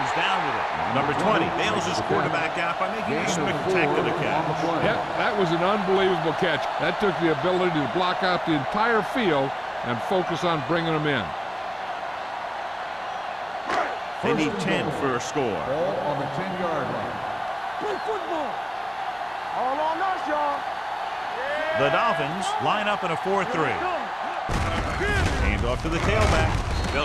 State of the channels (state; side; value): identical; both; correlation 1.00